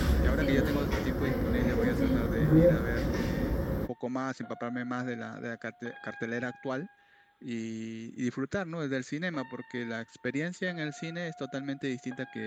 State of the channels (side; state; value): both; identical; correlation 1.00